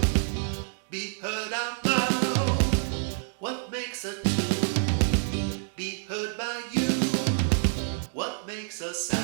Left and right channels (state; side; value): silent; left; digital silence